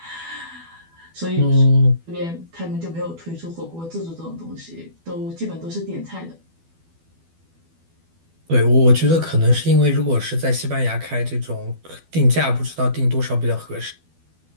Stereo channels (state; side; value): late; left; 12 ms